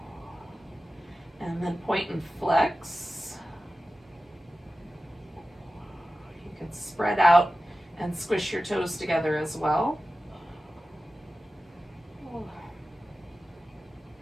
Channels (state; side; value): normal; both; correlation 0.95